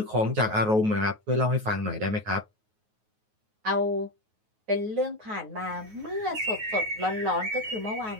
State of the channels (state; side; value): late; left; 9.4 ms